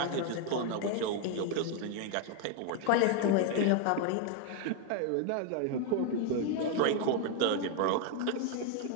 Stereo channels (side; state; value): both; different; correlation 0.01